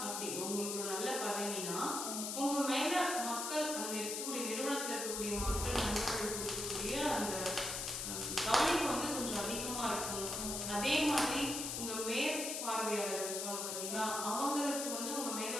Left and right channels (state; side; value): noise; left; hiss, 3 dB below the sound